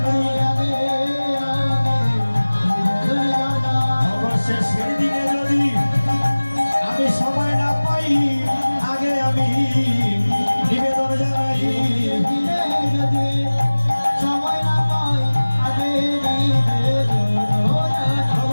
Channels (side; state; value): both; inverted; correlation -1.00